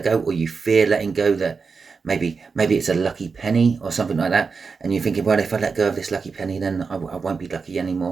go, or you fear letting go. That maybe it's a lucky penny or something like that, and you're thinking, well, if I let go of this lucky penny, then I won't be lucky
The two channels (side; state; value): left; quieter; 5.0 dB